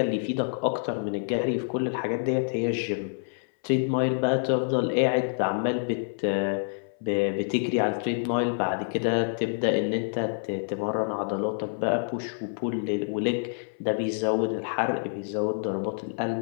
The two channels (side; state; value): right; silent; 60 dB below the other